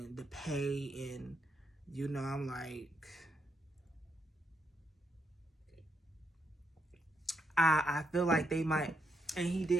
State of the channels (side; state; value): both; normal; correlation 0.80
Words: the pay. And, you know, I'm like, I feel like they might. And he